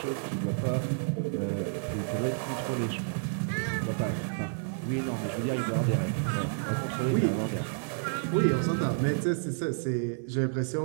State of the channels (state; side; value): silent; left; digital silence